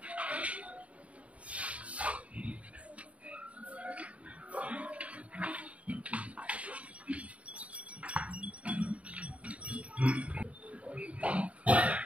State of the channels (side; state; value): left; late; 0.065 ms